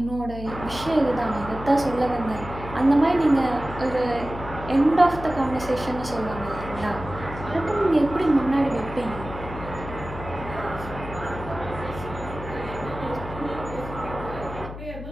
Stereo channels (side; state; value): left; noise; hum, 10 dB below the sound